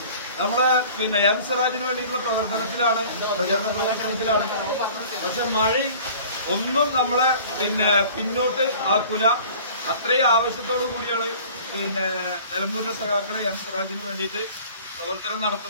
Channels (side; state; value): both; inverted; correlation -0.46